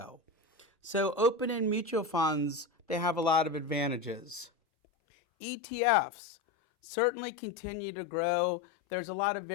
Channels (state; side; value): drops out; right; at 4.5 s